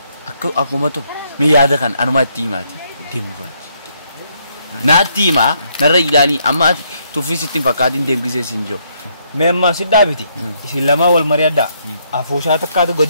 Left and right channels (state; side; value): inverted; both; correlation -0.73